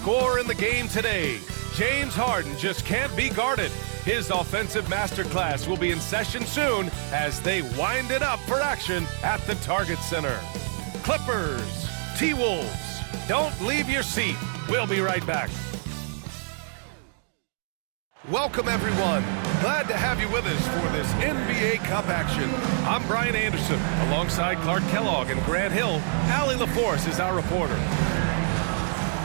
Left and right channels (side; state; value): left; silent; digital silence